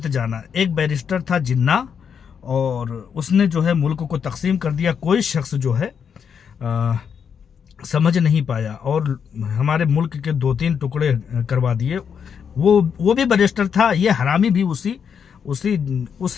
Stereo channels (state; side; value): quieter; right; 7.1 dB